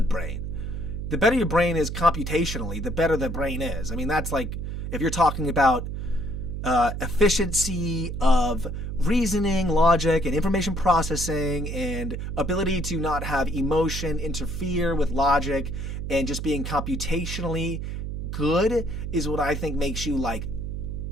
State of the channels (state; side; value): noise; right; hum, 5 dB below the sound